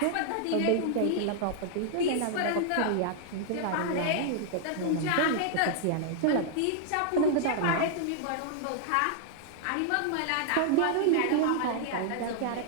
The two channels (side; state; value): both; different; correlation -0.01